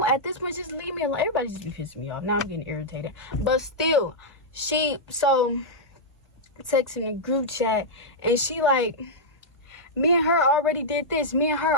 At this point, just leave me alone. Everybody just be pissing me off. Now I'm getting irritated. But still, so texting the group chat, and she like, me and her already did this. Me and her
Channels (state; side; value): normal; both; correlation -0.07